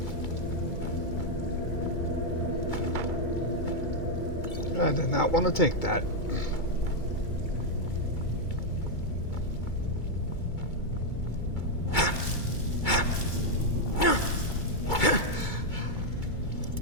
I did not want to take that.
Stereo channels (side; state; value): right; late; 2.3 ms